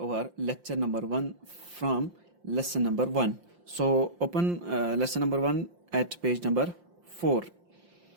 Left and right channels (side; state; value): left; late; 5.7 ms